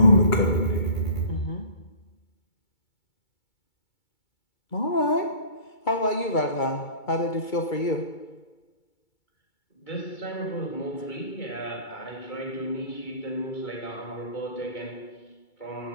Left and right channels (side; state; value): right; late; 2.3 ms